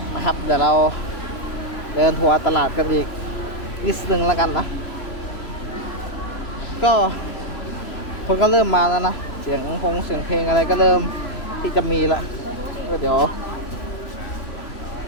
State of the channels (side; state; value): right; late; 3.0 ms